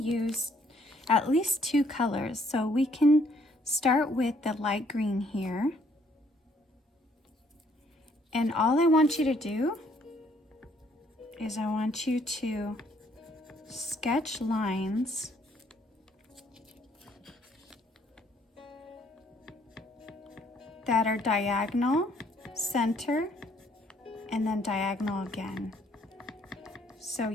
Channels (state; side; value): normal; both; correlation 0.66